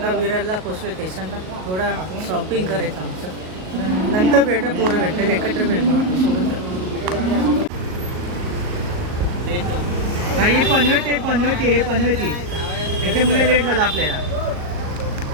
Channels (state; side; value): late; left; 38 ms